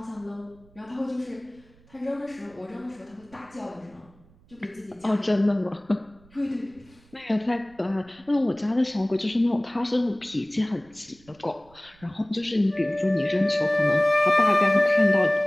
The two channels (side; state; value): right; noise; rumble, 28 dB below the sound